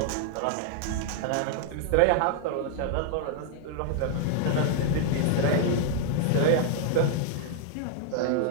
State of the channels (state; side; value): different; both; correlation 0.00